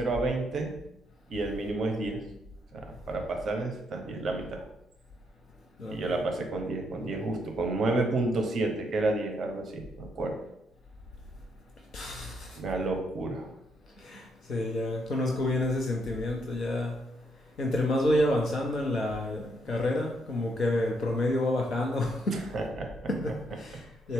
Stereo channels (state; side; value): normal; both; correlation 0.75